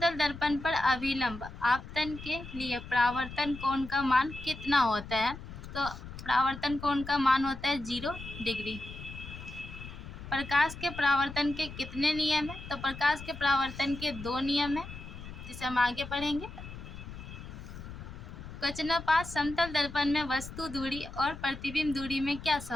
दर्पण पर अभिलंब आपतन के लिए परावर्तन कोण का मान कितना होता है। तो परावर्तन कोण का मान होता है 0 डिग्री। प्रकाश के परावर्तन के कितने नियम हैं। तो प्रकाश के परावर्तन के 2 नियम हैं, जिसे हम आगे पढ़ेंगे। क्वेश्चन नंबर 5, समतल दर्पण में वस्तु दूरी और प्रतिबिंब दूरी में क्या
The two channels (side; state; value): left; noise; rumble, 12 dB below the sound